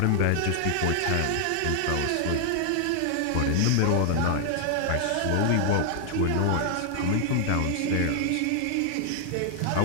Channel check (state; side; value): different; both; correlation 0.00